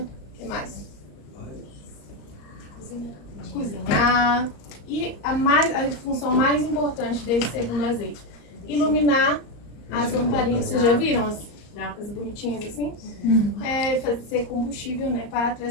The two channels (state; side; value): late; right; 34 ms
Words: que mais? Cozinhar. E a função mais importante desse segundo azeite, iluminar as lamparinas. Vocês já viram as bonitinhas assim? É fazer combustível, né, para